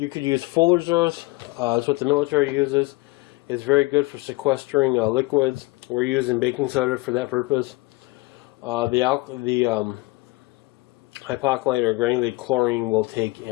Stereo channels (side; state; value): right; quieter; 22.7 dB